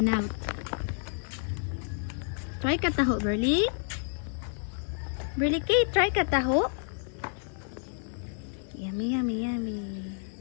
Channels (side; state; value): right; silent; 58 dB below the other